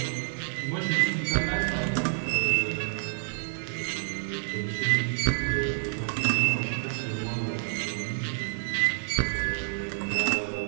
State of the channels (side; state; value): left; silent; 59 dB below the other